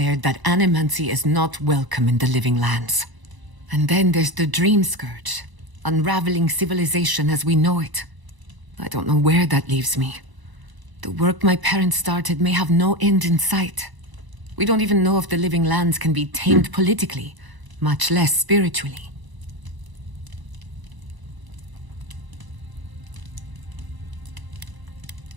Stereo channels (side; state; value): left; late; 1.0 ms